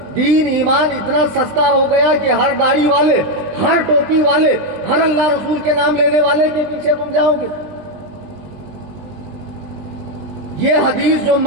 دین ایمان اتنا سستا ہو گیا کہ ہر داڑھی والے، ہر ٹوپی والے، ہر اللہ رسول کے نام لینے والے کے پیچھے تم جاؤ گے۔ یہ حدیث جو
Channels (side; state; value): left; late; 20 ms